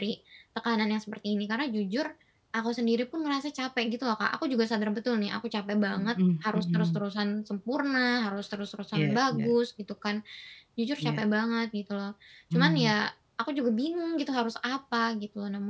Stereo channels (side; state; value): both; identical; correlation 1.00